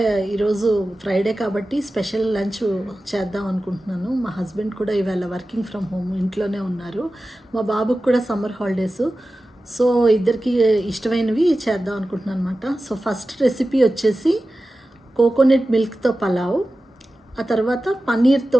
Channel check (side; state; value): both; normal; correlation 0.95